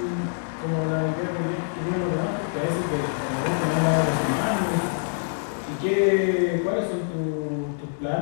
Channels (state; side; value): silent; right; digital silence